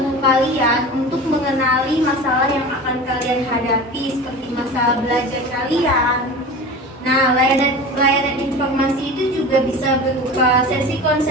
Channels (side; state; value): both; normal; correlation 0.33